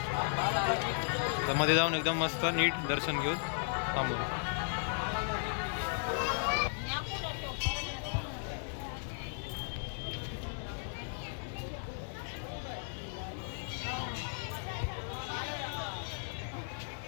तर मध्ये जाऊन एकदम मस्त नीट दर्शन घेऊन थांबू.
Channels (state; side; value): silent; right; digital silence